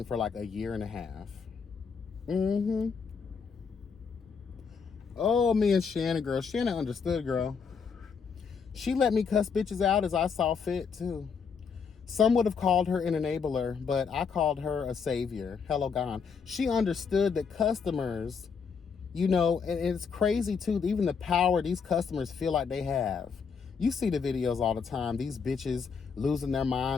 for like a year and a half. Mm-hmm. Oh, me and Shannon, girl. Shannon understood, girl. She let me cuss bitches out as I saw fit, too. Some would have called her an enabler, but I called her a savior. Hello, God. She understood that customers, and it's crazy, too, even the power these customers feel like they have. You see the videos all the time. These bitches losing their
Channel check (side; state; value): right; quieter; 5.9 dB